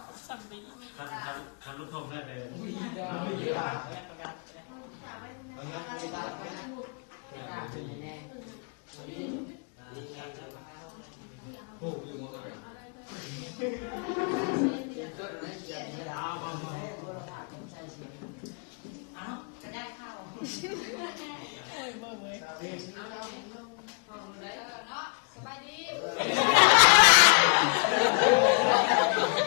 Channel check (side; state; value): right; quieter; 36.0 dB